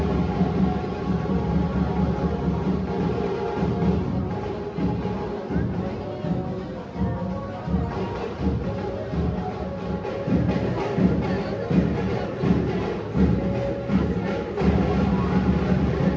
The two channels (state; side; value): identical; both; correlation 1.00